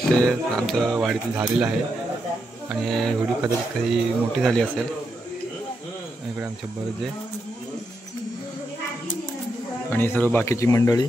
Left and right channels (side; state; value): both; normal; correlation 0.83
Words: आमचं वाडीतील झालेलं आहे आणि व्हिडिओ कदाचित काही मोठी झाली असेल. इकडे आमचे बर्जे आणि सर्व बाकीची मंडळी